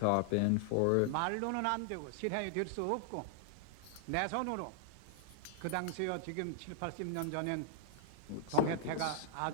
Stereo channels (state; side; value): different; both; correlation -0.01